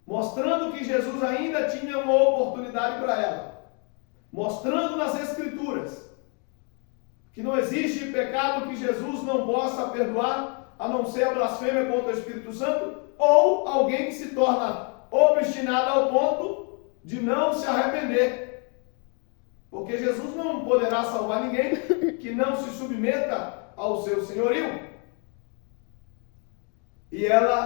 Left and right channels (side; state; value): right; quieter; 37.4 dB